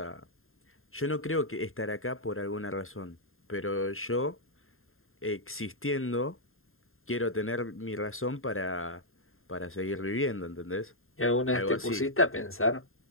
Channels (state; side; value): late; right; 0.61 ms